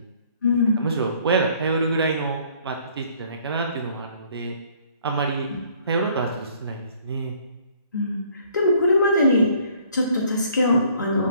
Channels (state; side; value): inverted; both; correlation -0.60